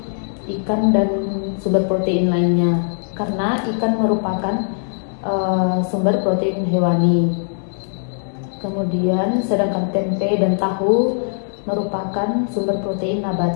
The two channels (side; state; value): right; silent; digital silence